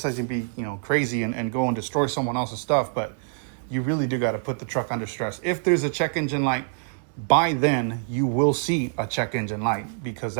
be, you know, crazy and go and destroy someone else's stuff, but you really do got to put the truck under stress. If there's a check engine light, by then you will see a check engine light, because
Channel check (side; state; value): left; silent; digital silence